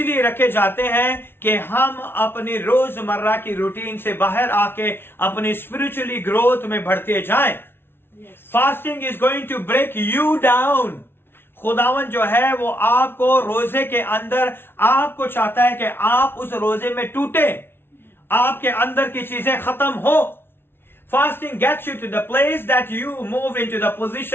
रखे जाते हैं कि हम अपनी रोजमर्रा की रूटीन से बाहर आके अपनी स्पिरिचुअली ग्रोथ में बढ़ते जाएं। Fasting is going to break you down. खुदावन जो है वो आपको रोजे के अंदर, आपको चाहता है कि आप उस रोजे में टूटे, आपके अंदर की चीजें खत्म हो। Fasting gets you to the place that you move into the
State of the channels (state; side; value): late; right; 0.11 ms